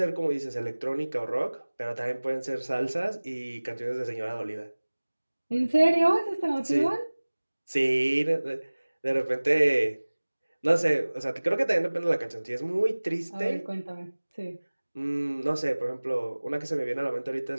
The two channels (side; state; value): both; inverted; correlation -1.00